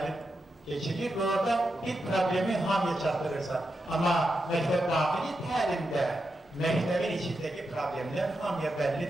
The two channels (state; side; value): normal; both; correlation 0.87